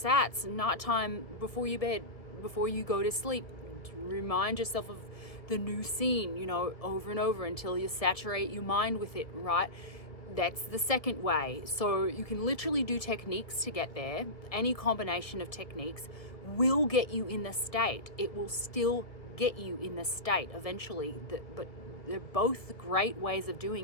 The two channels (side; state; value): right; late; 1.4 ms